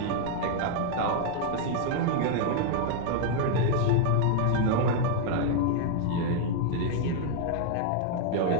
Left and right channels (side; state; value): both; different; correlation 0.00